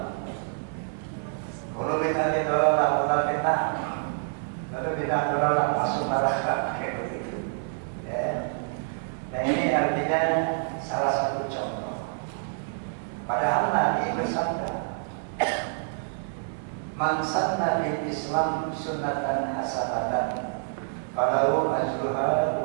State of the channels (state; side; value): silent; left; 55 dB below the other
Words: Kalau kita ditolak, kita fitnah, lalu kita tolak masuk neraka kayak begitu. Ya. Nah, ini artinya salah satu contoh. Padahal Nabi bersabda, "Man sanna fil Islam sunnatan hasanatan, falahu ajruha